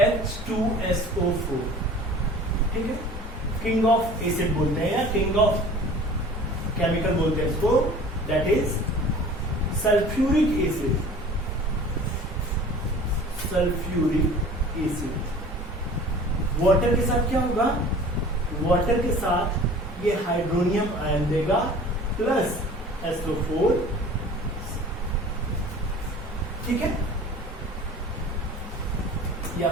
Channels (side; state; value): both; normal; correlation 0.44